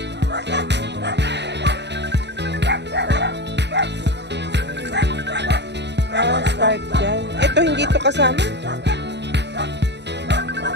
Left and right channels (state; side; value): late; left; 0.50 ms